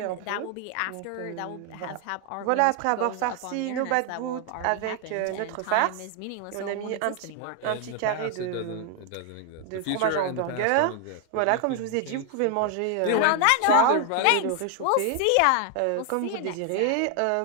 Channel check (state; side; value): different; both; correlation 0.00